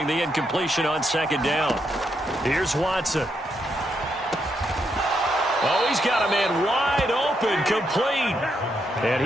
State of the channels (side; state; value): both; normal; correlation 0.79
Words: the incompletion on 2nd down. Here's Watson. Oh, he's got a man wide open, complete. And